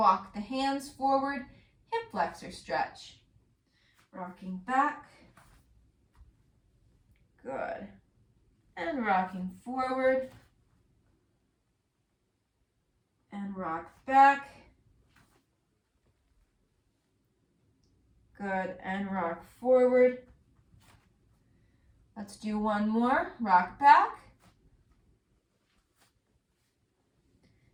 the hands forward, hip flexor stretch. Rocking back, good, and rocking forward, and rock back, good, and rock forward. Let's do one more, rock back,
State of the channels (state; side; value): identical; both; correlation 1.00